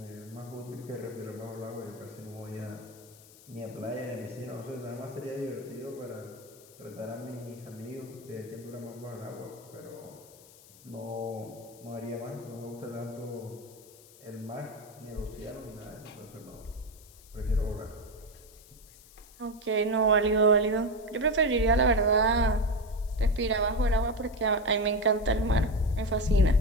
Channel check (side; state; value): left; noise; hiss, 22 dB below the sound